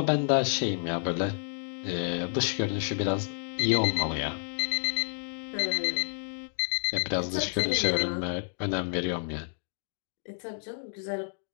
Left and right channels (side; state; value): right; silent; digital silence